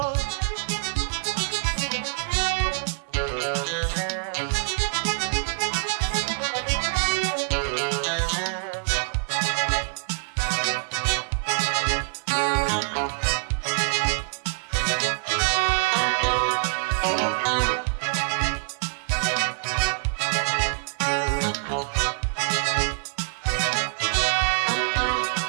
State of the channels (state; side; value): silent; left; 58 dB below the other